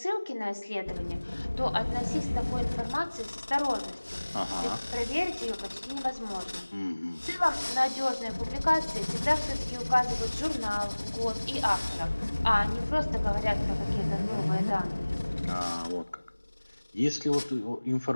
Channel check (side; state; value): both; inverted; correlation -1.00